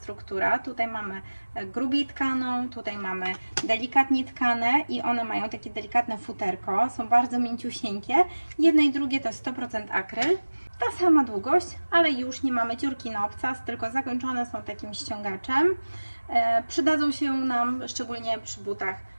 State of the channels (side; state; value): both; inverted; correlation -1.00